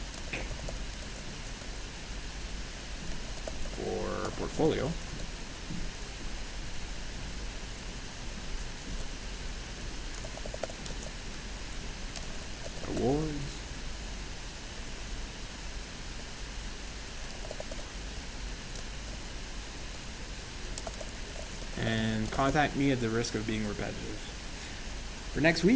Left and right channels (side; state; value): both; identical; correlation 1.00